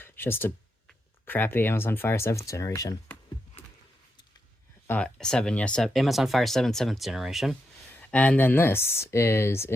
It's just a crappy Amazon Fire 7th generation. 7, yes, Amazon Fire 7 7th generation. And then this is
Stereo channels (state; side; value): normal; both; correlation 0.84